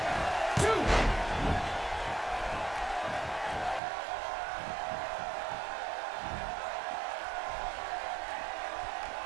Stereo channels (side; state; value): left; drops out; at 3.8 s